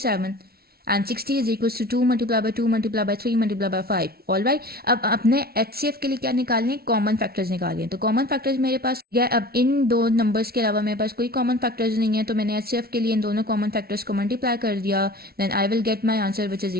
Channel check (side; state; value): left; late; 0.44 ms